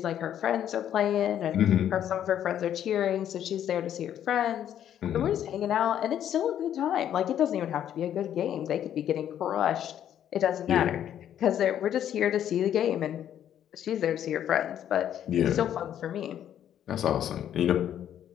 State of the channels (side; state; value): right; quieter; 10.3 dB